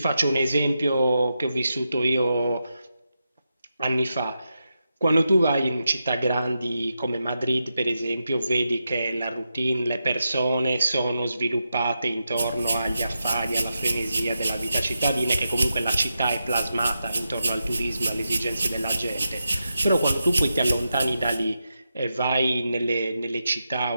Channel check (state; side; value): inverted; both; correlation -0.87